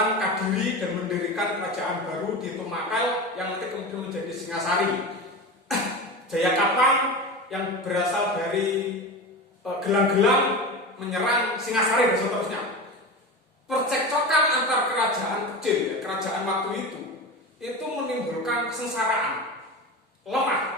Kadiri dan mendirikan kerajaan baru di Tumakal yang nanti kemudian menjadi Singasari. Jayakatwang yang berasal dari Gelang-Gelang menyerang Singasari dan seterusnya. Percekcokan antar kerajaan kecil, ya, kerajaan waktu itu menimbulkan kesengsaraan,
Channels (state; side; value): normal; both; correlation 0.27